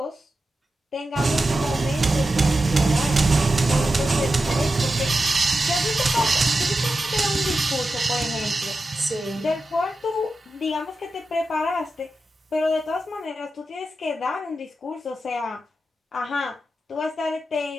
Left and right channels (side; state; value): both; normal; correlation 0.91